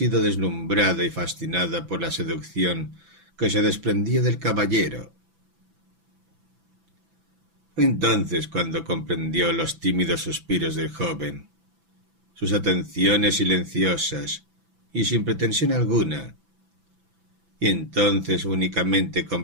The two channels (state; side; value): late; left; 6.0 ms